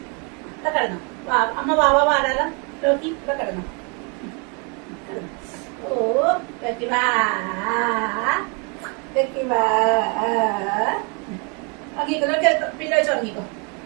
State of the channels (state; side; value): quieter; left; 34.1 dB